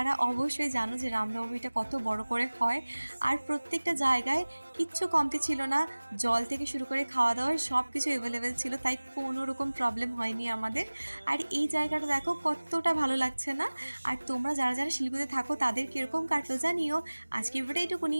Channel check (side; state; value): both; inverted; correlation -1.00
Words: অবশ্যই জানো যে রামনবমীটা কত বড় করে হয়। আর প্রত্যেকটা জায়গায় কিচ্ছু কমতি ছিল না, জল থেকে শুরু করে খাওয়া দাওয়ার সব কিছু অ্যাভেলেবেল ছিল, তাই কোনো রকম প্রবলেম হয়নি আমাদের। আর এই জায়গাটা দেখো কতটা ভালো লাগছে না। আর তোমরা যারা যারা শিলিগুড়িতে থাকো তাদের কীরকম কাটলো জানিও। আজকে ভিডিওটা এইটুকুনি,